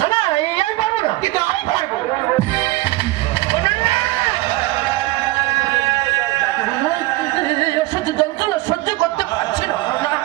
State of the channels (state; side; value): quieter; left; 19.0 dB